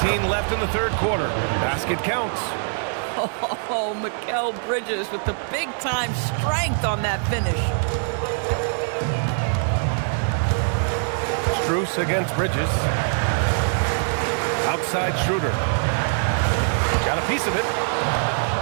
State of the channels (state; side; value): silent; left; 61 dB below the other